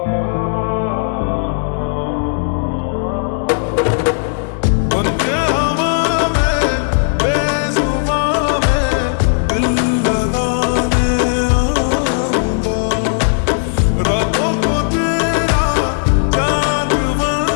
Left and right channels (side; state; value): right; silent; 69 dB below the other